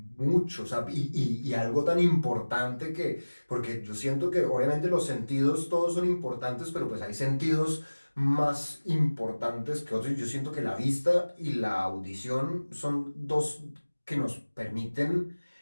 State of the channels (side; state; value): both; inverted; correlation -1.00